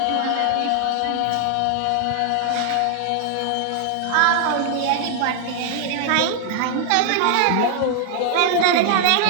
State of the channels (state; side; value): different; both; correlation 0.00